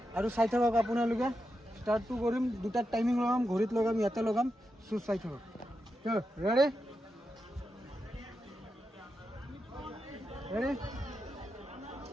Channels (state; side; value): normal; both; correlation 0.87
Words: আৰু চাই থাকক আপোনালোকে স্টাৰ্টটো কৰিম দুটাত টাইমিং লগাম ঘড়ীত লগাম ইয়াতে লগাম চ' চাই থাকক ৰেডি ৰেডি